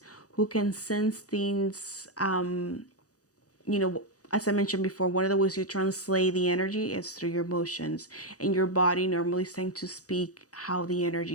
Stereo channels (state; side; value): late; right; 0.67 ms